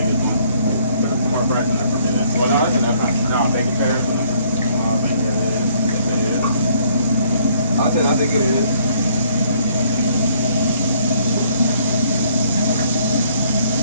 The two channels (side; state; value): both; inverted; correlation -0.63